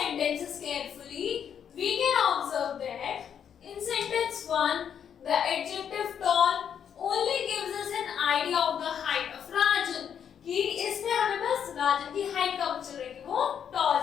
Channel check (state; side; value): quieter; right; 8.3 dB